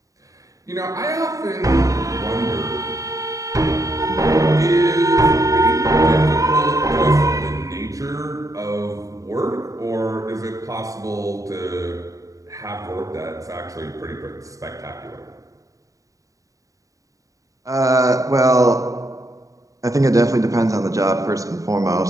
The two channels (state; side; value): late; left; 0.16 ms